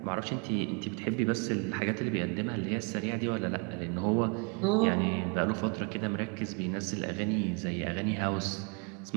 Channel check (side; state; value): left; quieter; 33.9 dB